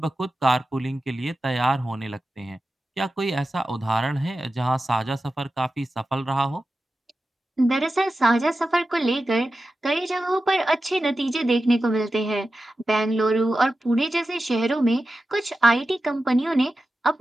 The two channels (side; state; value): both; normal; correlation 0.93